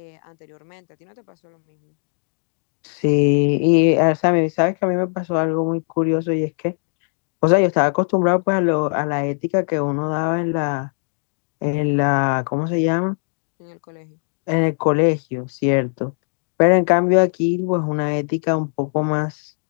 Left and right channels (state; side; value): silent; right; 63 dB below the other